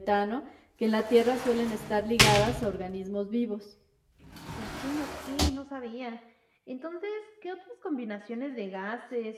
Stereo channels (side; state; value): both; identical; correlation 1.00